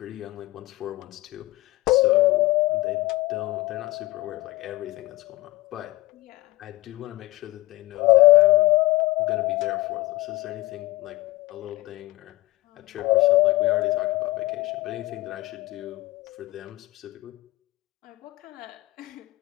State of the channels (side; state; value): right; quieter; 19.6 dB